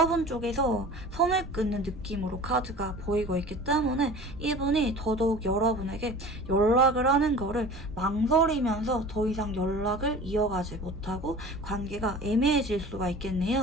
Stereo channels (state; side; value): noise; right; rumble, 19 dB below the sound